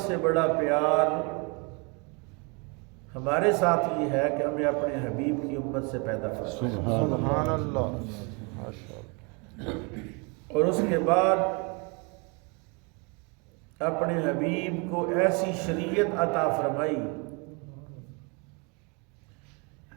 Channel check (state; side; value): quieter; left; 32.1 dB